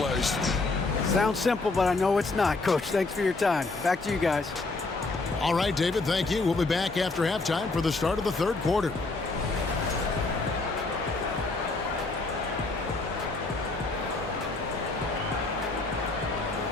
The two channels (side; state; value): right; quieter; 3.5 dB